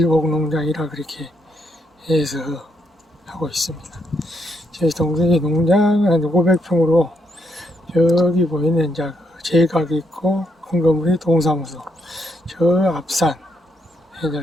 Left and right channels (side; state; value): both; normal; correlation 0.76